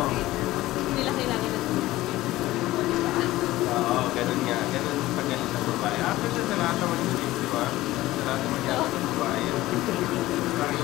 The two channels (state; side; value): quieter; right; 17.0 dB